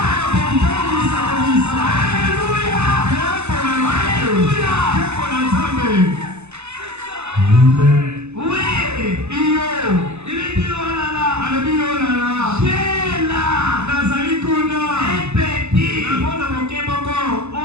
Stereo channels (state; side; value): late; left; 0.81 ms